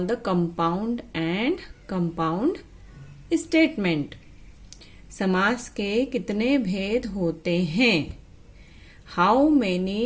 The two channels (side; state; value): both; identical; correlation 1.00